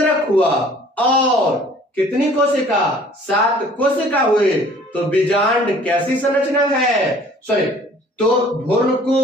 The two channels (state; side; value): normal; both; correlation 0.53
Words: हुआ। और कितनी कोशिका? 7 कोशिका हुए। तो बीजांड कैसी संरचना है? सॉरी, तो